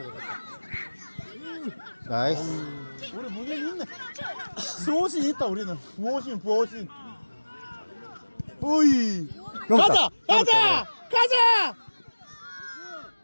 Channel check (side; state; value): both; inverted; correlation -1.00